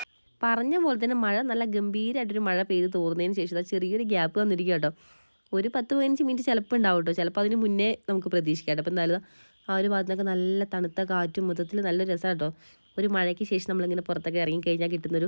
പറഞ്ഞ പോലെ തന്നെ മഴ നല്ല ഗംഭീരമായിട്ടൊരു മഴ പെയ്ത് തോർന്നതിന് ശേഷം ചെറിയൊരു ഗ്യാപ്പ് വന്നിരിക്കുക കേട്ടോ. ഒരു 10-15 മിനിറ്റ് ചിലപ്പോൾ ഉണ്ടാവും കേട്ടോ, ചിലപ്പോൾ അതിന് മുന്നേ നമുക്ക് പ്രതീക്ഷിക്കാം കേട്ടോ. അപ്പോൾ എന്തായാലും ആ ഒരു ഭാഗത്തൊക്കെ നല്ല തണുത്ത കാറ്റും മൊത്തത്തിൽ നല്ല രസമാണ് കേട്ടോ. ഒരു മഴയ്ക്ക് ശേഷം നമ്മളിങ്ങനെ പുറത്തൊക്കെ ഇറങ്ങിക്കഴിഞ്ഞാൽ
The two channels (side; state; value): both; inverted; correlation -1.00